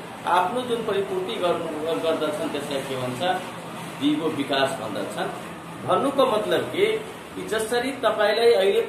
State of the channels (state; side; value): identical; both; correlation 1.00